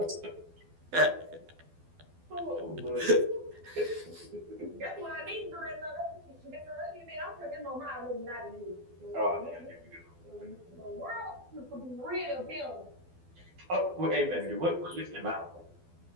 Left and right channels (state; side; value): late; left; 12 ms